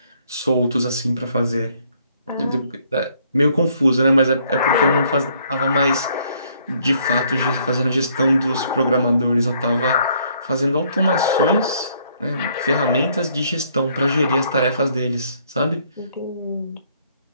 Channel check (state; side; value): inverted; both; correlation -0.66